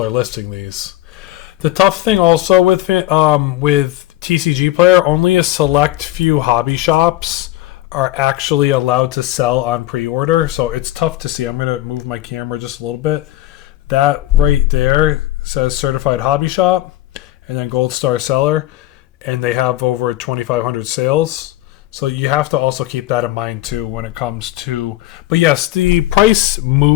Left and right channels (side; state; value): right; quieter; 15.6 dB